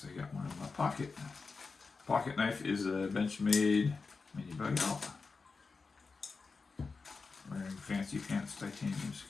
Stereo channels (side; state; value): right; quieter; 4.4 dB